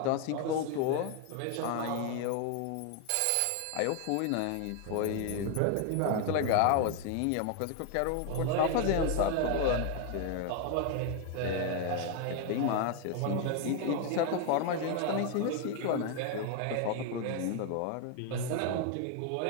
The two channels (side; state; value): both; different; correlation 0.01